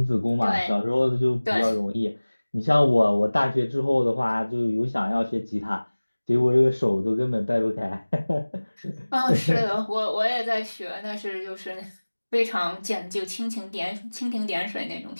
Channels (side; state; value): both; inverted; correlation -1.00